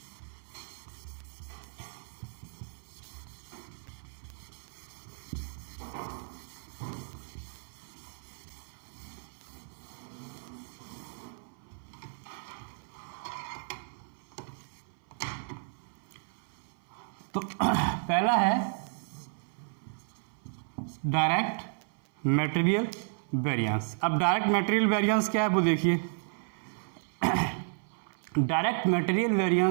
तो पहला है डायरेक्ट मटेरियल वेरिएंस। अब डायरेक्ट मटेरियल वेरिएंस क्या है वो देखिए। डायरेक्ट मटेरियल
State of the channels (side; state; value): left; silent; 56 dB below the other